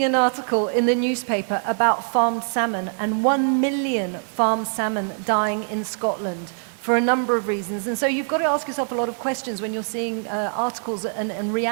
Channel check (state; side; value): silent; left; digital silence